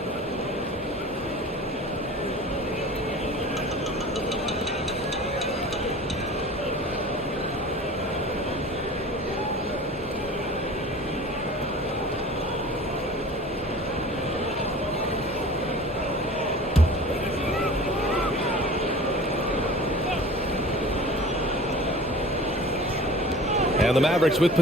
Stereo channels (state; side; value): normal; both; correlation 0.41